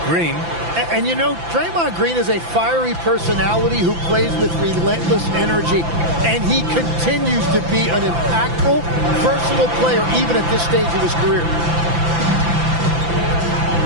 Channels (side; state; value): left; late; 5.9 ms